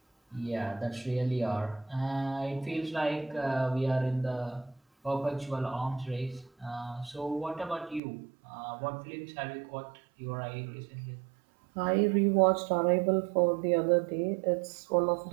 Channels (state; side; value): drops out; left; at 8.0 s